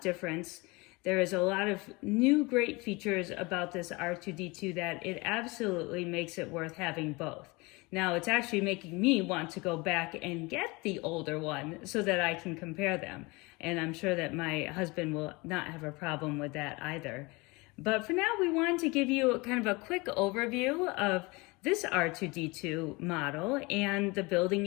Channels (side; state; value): right; quieter; 25.2 dB